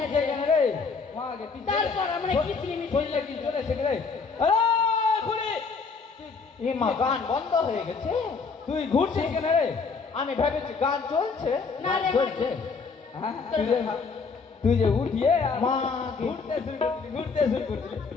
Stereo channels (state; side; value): quieter; right; 4.9 dB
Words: গান বন্ধ হয়ে গেছে তুই ঘুরছিস কেন রে আমি ভেবেছি গান চলছে না রে চলছে তুই যে উঠিয়ে মা ঘুরতে শুরু করছিলি